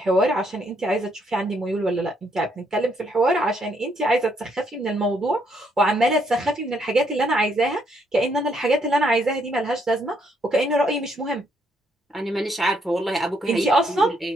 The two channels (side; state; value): both; normal; correlation 0.72